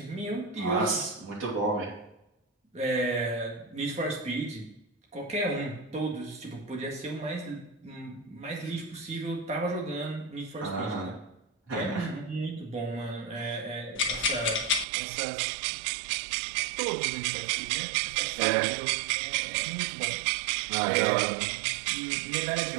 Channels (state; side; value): drops out; left; at 14.9 s